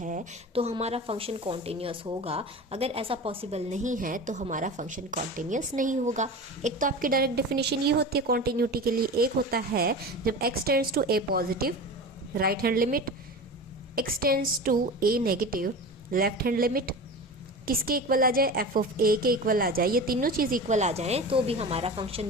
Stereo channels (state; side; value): normal; both; correlation 0.31